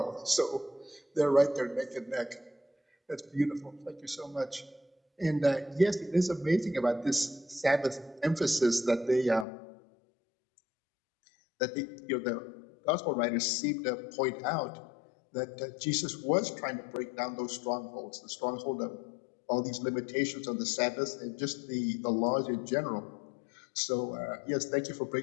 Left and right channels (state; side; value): drops out; right; at 9.5 s